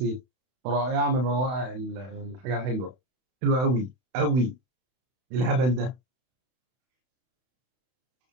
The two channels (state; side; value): late; left; 31 ms